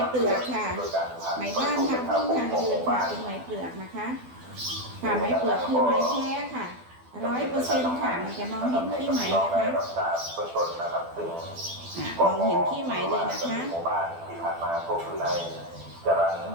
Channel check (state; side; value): late; left; 12 ms